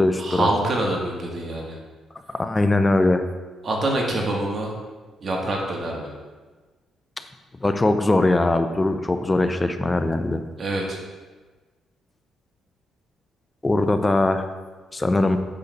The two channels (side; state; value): both; normal; correlation 0.91